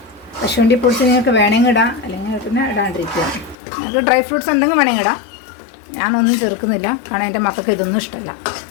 കശുവണ്ടി പൊടിച്ച് നിങ്ങൾക്ക് വേണമെങ്കിൽ ഇടാം, അല്ലെങ്കിൽ പിന്നെ ഇടാണ്ടിരിക്കുക. നിങ്ങൾക്ക് ഡ്രൈ ഫ്രൂട്ട്സ് എന്തെങ്കിലും വേണമെങ്കിൽ ഇടാം. ഞാനൊന്നും ചേർക്കുന്നില്ല, കാരണം എൻ്റെ മക്കൾക്ക് ഇതൊന്നും ഇഷ്ടമല്ല.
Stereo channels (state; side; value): drops out; right; at 3.6 s